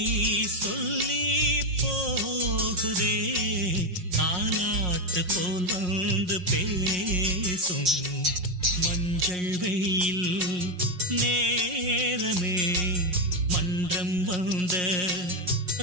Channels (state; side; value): late; left; 5.5 ms